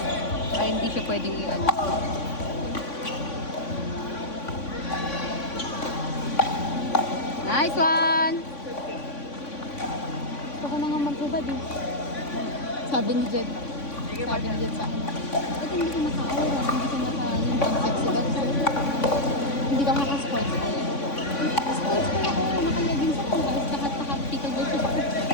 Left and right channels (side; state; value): right; late; 3.5 ms